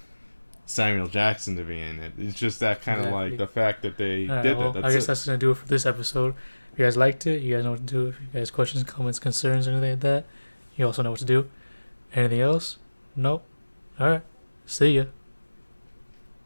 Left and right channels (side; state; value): both; inverted; correlation -1.00